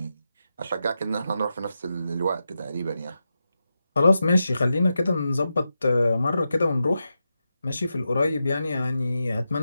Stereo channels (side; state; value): both; inverted; correlation -0.88